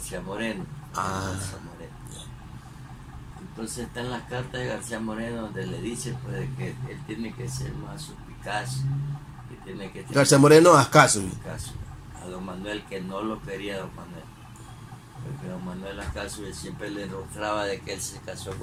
Moreno. García Moreno. Entonces están las cartas de García Moreno donde le dice pues que él tiene que ser más suspicaz, que tiene que García Moreno, Ascasubi. caso a don Manuel, que no lo quería don Manuel, porque don Manuel Ascasio siempre le enrostraba de que él se casó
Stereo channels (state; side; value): identical; both; correlation 1.00